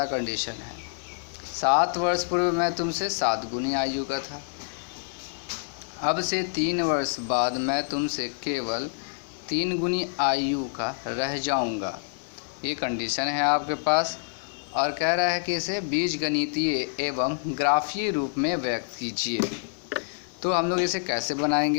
कंडीशन है, 7 वर्ष पूर्व मैं तुमसे 7 गुनी आयु का था। अब से 3 वर्ष बाद मैं तुमसे केवल 3 गुनी आयु का रह जाऊंगा। ये कंडीशन है आपके पास, और कह रहा है कि इसे बीजगणितीय एवं ग्राफीय रूप में व्यक्त कीजिए। तो हम लोग इसे कैसे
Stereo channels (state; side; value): silent; right; digital silence